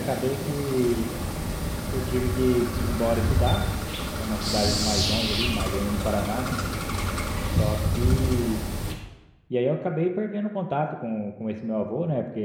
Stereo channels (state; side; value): identical; both; correlation 1.00